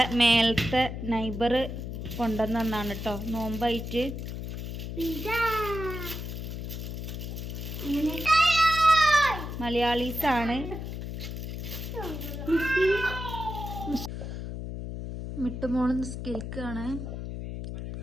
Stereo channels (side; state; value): left; noise; hum, 6 dB below the sound